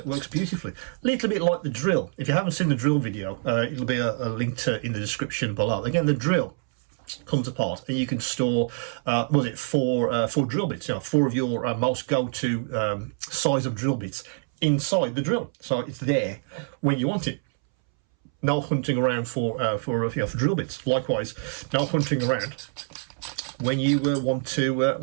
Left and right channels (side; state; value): left; silent; 61 dB below the other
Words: beautifully. A little bit like the drill. If you haven't seen the drill video, it'll be a link in the description below. Again, the drill comes apart and you can store four drill bits, 4 of your most go-to size of drill bits inside the drill, so it's there when you want it. No hunting around for drill bits. Likewise, no hunting around when you want to